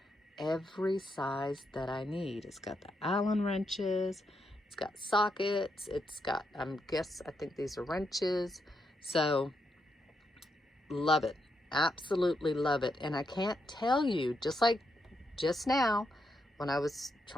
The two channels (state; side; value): normal; both; correlation 0.81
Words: every size that I need. It's got the Allen wrenches, it's got sockets, it's got, I think these are wrenches. So love it, absolutely love it. And I can't tell you, just like just now when I was